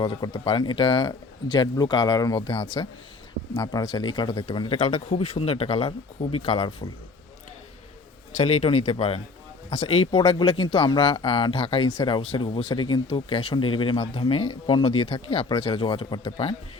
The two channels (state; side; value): quieter; right; 3.9 dB